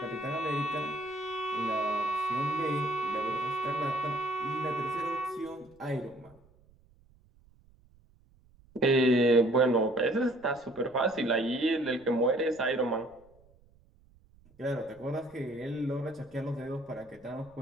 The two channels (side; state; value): right; noise; rumble, 29 dB below the sound